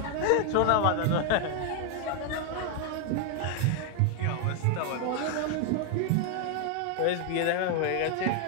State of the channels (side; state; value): both; different; correlation 0.01